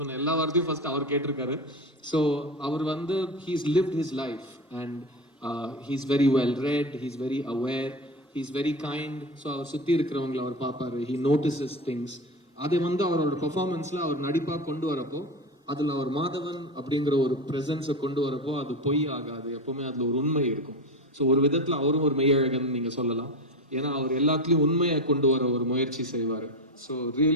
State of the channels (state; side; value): normal; both; correlation 0.22